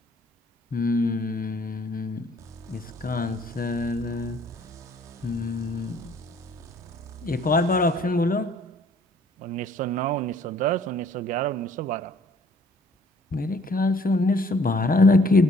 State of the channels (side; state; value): both; normal; correlation 0.59